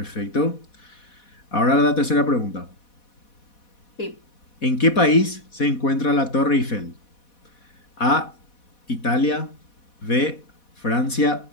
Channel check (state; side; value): late; right; 4.1 ms